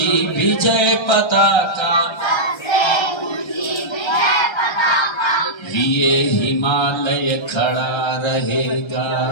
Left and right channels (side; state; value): right; late; 1.3 ms